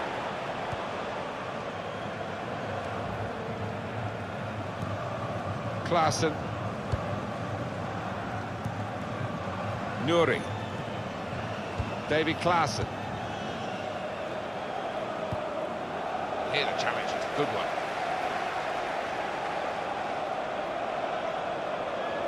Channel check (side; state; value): both; identical; correlation 1.00